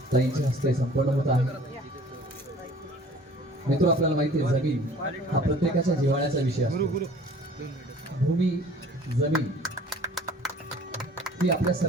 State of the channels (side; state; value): both; normal; correlation 0.50